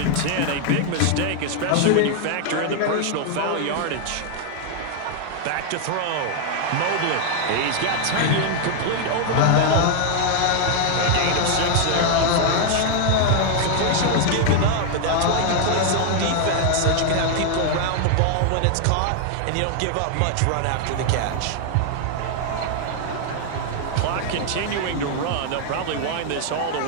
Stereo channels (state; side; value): different; both; correlation 0.00